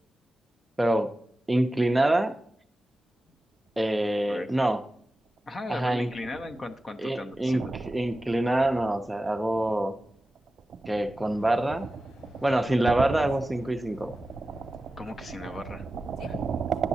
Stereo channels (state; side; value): normal; both; correlation 0.94